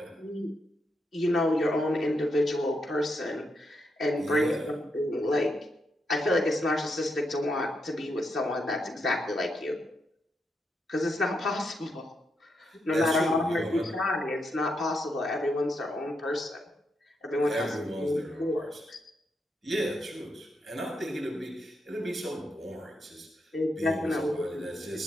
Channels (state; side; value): normal; both; correlation 0.82